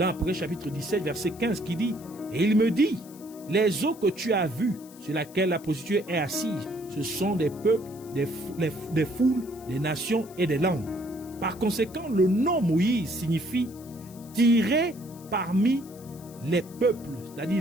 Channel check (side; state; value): left; noise; hiss, 22 dB below the sound